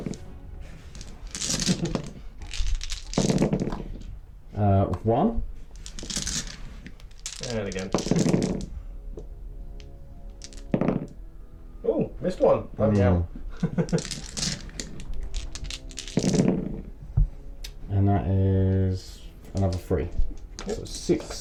1. And again. Oh, missed one. Oh, yeah. And that is another 3. Yep. So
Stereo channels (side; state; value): both; identical; correlation 1.00